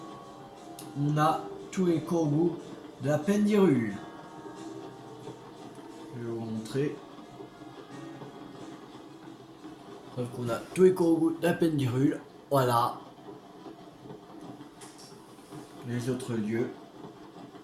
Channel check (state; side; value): identical; both; correlation 1.00